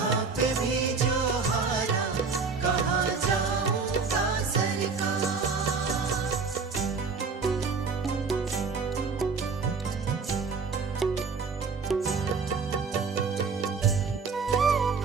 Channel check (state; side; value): quieter; left; 5.0 dB